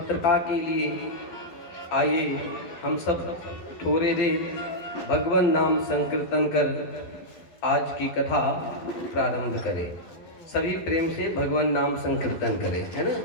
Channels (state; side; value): late; right; 12 ms